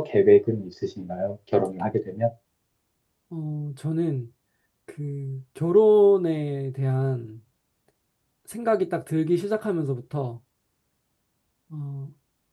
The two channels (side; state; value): both; identical; correlation 1.00